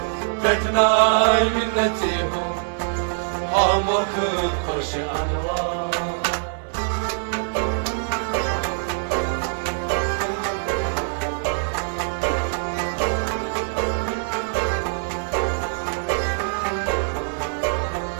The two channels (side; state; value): left; silent; 63 dB below the other